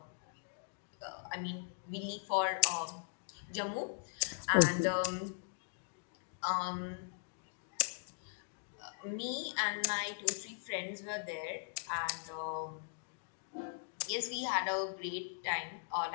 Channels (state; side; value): silent; right; digital silence